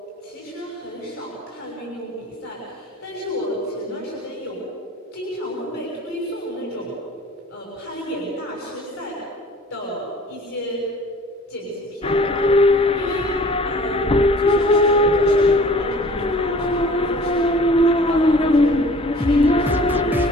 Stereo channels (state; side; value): normal; both; correlation 0.48